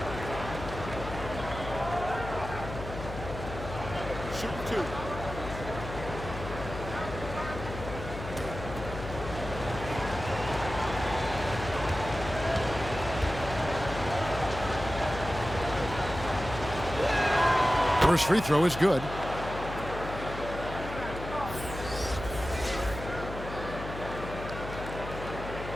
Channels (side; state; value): left; noise; hum, 9 dB below the sound